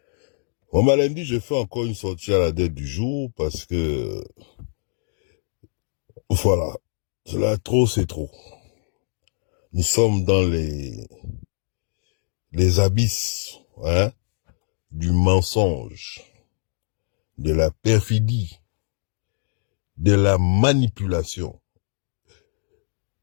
lundi, je fais encore une sortie à la date du jour parce que, voilà, cela trop, c'est trop. Nous sommes dans les abysses, hein, du mensonge, de la perfidie, de la manipulation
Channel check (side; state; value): right; silent; digital silence